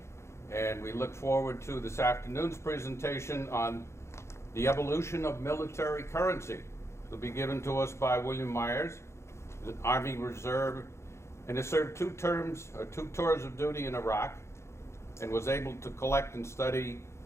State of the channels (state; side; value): late; right; 0.13 ms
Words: and we look forward to this afternoon's presentation on the evolution of military currency. It'll be given to us by William Myers, the Army Reserve, and has served two tours of duty in Iraq, and was able to collect and study